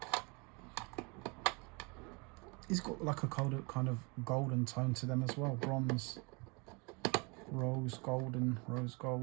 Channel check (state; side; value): quieter; left; 30.1 dB